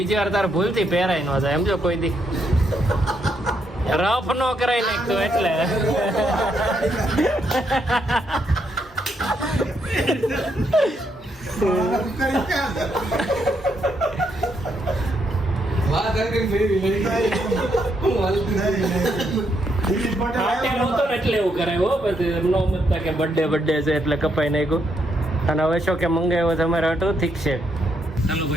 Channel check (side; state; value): both; normal; correlation 0.77